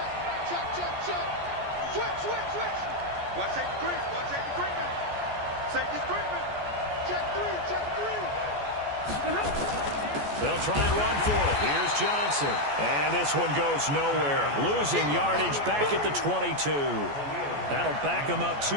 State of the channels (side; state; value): left; late; 14 ms